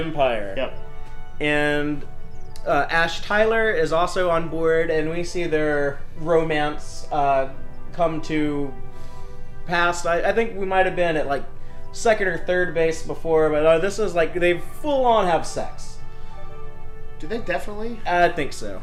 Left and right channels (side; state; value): both; identical; correlation 1.00